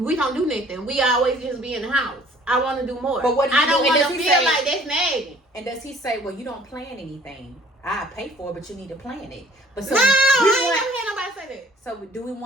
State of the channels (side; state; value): both; normal; correlation 0.54